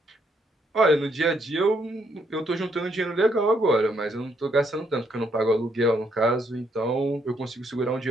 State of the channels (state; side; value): normal; both; correlation 0.73